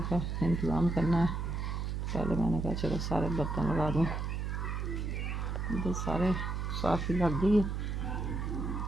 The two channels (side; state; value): right; noise; hum, 2 dB below the sound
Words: का इंतज़ाम करना है। पहले मैंने कहा चलो सारे बर्तन लगा दूँ, इधर सारे साफ़ी लग गई है,